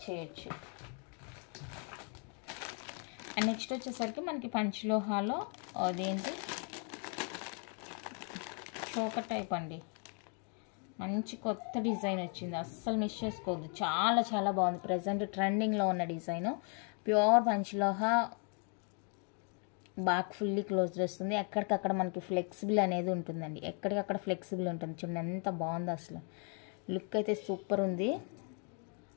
చేయొచ్చు. అండ్ నెక్స్ట్ వచ్చేసరికి మనకి పంచలోహాలో అదేంటి చోకర్ టైప్ అండి. మంచి కొత్త డిజైన్ వచ్చింది, అస్సలు మిస్ చేసుకోవద్దు. చాలా చాలా బాగుంది. ప్రజెంట్ ట్రెండింగ్లో ఉన్న design. Pure panchaloha, back fully close చేస్తుంది. ఎక్కడికక్కడ మనకి ఫ్లెక్సిబుల్ అనేది ఉంటుందండి, ఎక్కడికక్కడ ఫ్లెక్సిబుల్ ఉంటుంది. చూడండి ఎంత బాగుందో, అసలు లుక్ అయితే సూపర్ ఉంది.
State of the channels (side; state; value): right; quieter; 39.9 dB